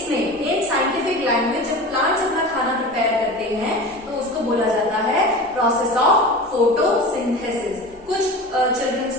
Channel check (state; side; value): normal; both; correlation 0.32